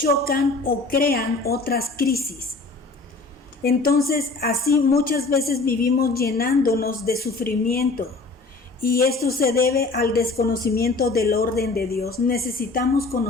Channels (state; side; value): quieter; right; 3.6 dB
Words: o crean otras crisis. Entonces, así muchas veces vivimos llenándonos de sufrimiento y esto se debe al desconocimiento del orden de Dios. Necesitamos